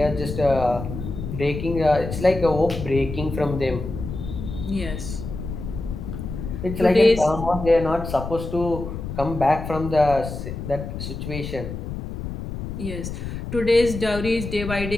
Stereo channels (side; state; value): left; noise; rumble, 7 dB below the sound